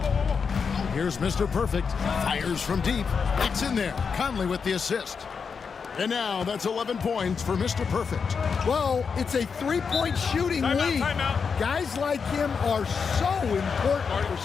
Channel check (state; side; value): quieter; right; 5.8 dB